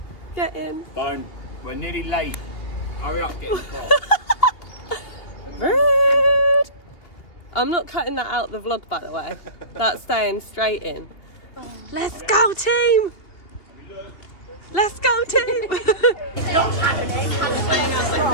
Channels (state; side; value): late; right; 2.8 ms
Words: get in. Don't. We're nearly late. Hurry up, get in the car. Rude. I'm not cutting that out the vlog, by the way. That's staying straight in. Let's go, team. Let's go, team. Not happening. Playing out my